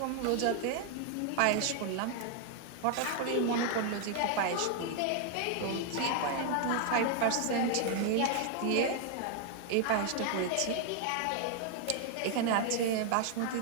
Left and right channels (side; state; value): both; different; correlation 0.00